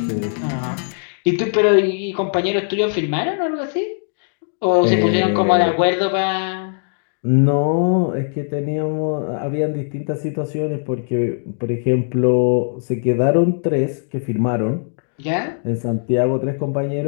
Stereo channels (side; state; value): right; silent; digital silence